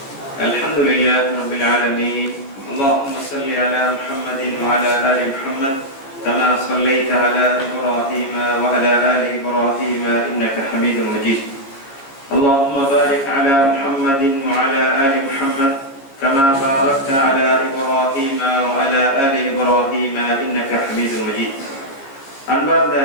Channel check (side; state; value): right; late; 15 ms